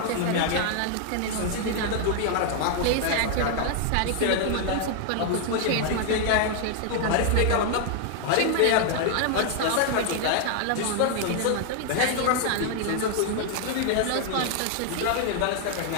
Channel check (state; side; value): different; both; correlation 0.00